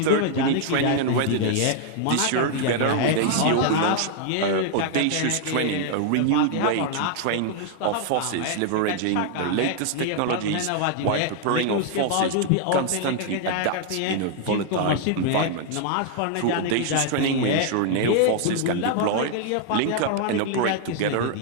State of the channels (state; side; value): different; both; correlation 0.00